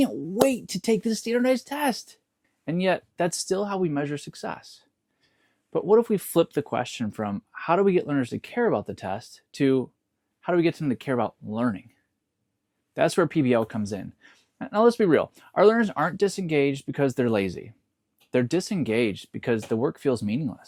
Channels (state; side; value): identical; both; correlation 1.00